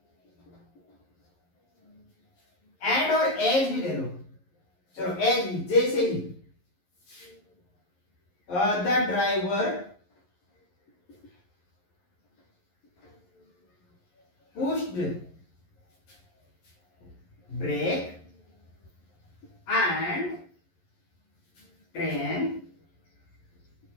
एंड और एज भी ले लो। चलो एज भी, जैसे ही the driver pushed brake and train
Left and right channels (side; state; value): right; late; 11 ms